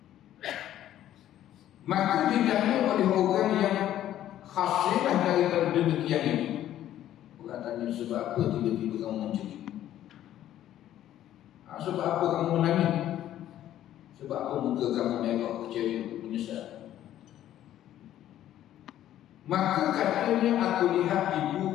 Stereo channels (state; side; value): quieter; right; 12.2 dB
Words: Maka ditanya oleh orang yang hasillah daripada demikian itu. Orang tanya, sebab apa tiba-tiba kamu macam ni? Sebab apa kamu menangis? Sebab apa muka kamu merah, kecewa, menyesal? Maka katanya, aku lihat